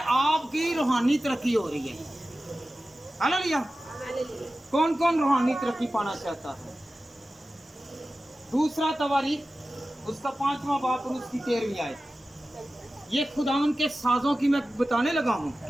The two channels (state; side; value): normal; both; correlation 0.95